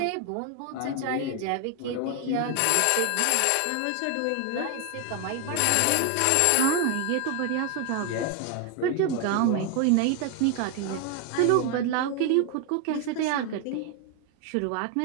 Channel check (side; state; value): both; different; correlation 0.01